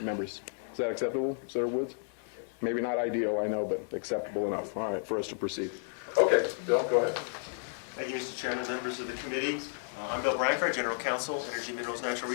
members. Is that acceptable, Senator Woods? Maybe not ideal, I know, but acceptable enough. All right, for us to proceed. Okay, Bill, go ahead. Thank you, Mr. Chairman, members of the committee. I'm Bill Branchard, General Counsel, Energy, Minerals, Natural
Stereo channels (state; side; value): silent; right; 56 dB below the other